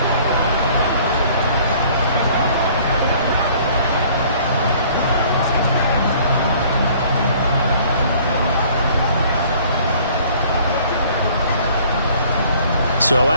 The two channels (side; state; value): both; inverted; correlation -0.55